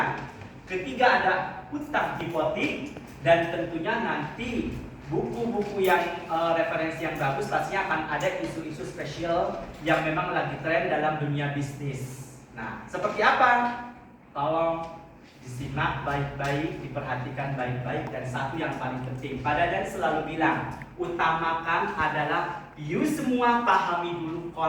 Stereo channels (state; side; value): identical; both; correlation 1.00